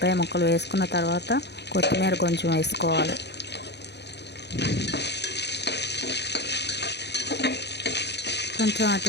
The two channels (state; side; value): late; right; 0.49 ms